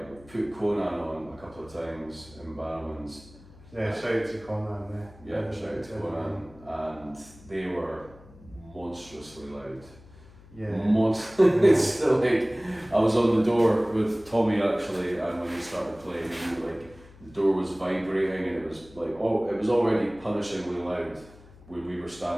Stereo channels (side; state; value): left; noise; hum, 22 dB below the sound